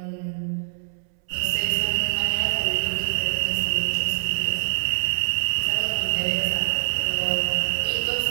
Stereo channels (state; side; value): silent; left; 62 dB below the other